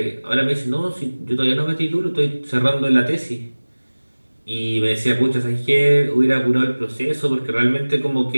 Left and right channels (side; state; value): both; inverted; correlation -1.00